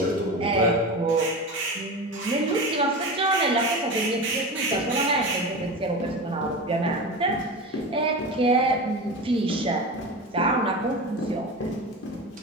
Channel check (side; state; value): both; normal; correlation 0.26